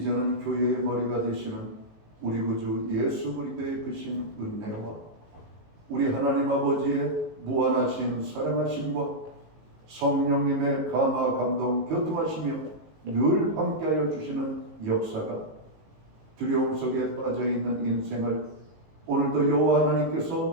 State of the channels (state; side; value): late; left; 19 ms